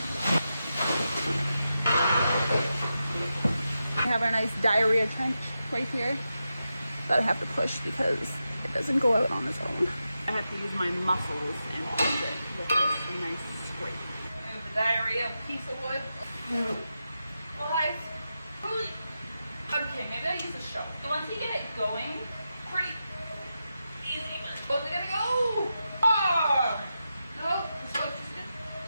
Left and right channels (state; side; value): inverted; both; correlation -0.89